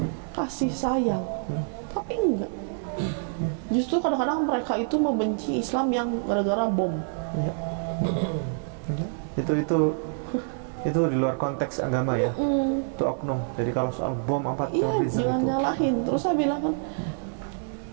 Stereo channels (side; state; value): left; silent; digital silence